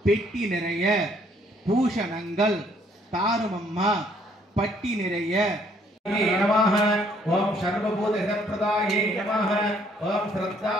பெட்டி நிறைய பூஷணங்கள் தாருமம்மா பட்டி நிறைய नमः ओम सर्वभूत हितप्रदाये नमः ओम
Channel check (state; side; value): normal; both; correlation 0.65